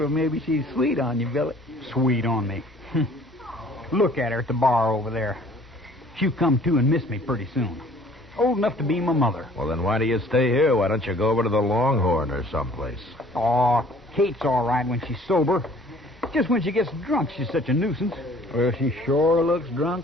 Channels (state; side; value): normal; both; correlation 0.54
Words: maybe she's sweet on you, Billy. Sweet on me. Look at her at the bar over there. She'll come to and miss me pretty soon. Old enough to be my mother. Well, then why do you stay here? Why don't you go over to the Longhorn or someplace? Oh, Kate's all right when she's sober. Just when she gets drunk, she's such a nuisance. Well, she sure looks